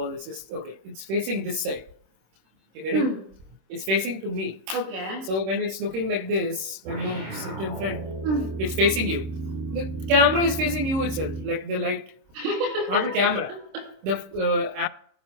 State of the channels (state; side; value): late; left; 26 ms